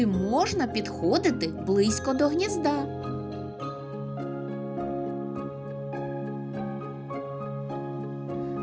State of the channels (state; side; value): identical; both; correlation 1.00